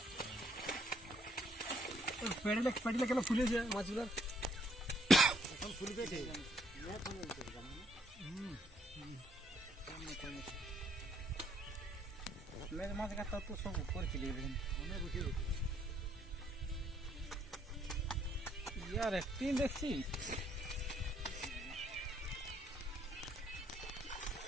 পেটলে কেন ফুলেছে মাছগুলো এখন ফুলবে মাছ কাটা তো সব করেছিল ইয়ার একটি দেখছি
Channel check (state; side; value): normal; both; correlation 0.69